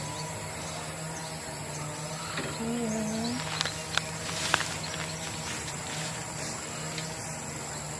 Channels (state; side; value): identical; both; correlation 1.00